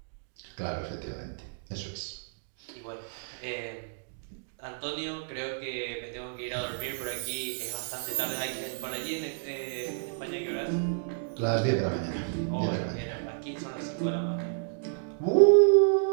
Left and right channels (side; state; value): left; silent; digital silence